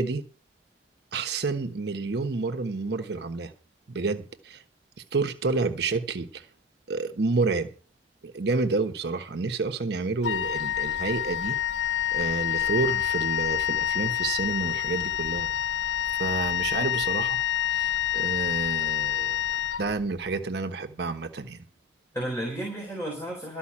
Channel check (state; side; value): normal; both; correlation 0.24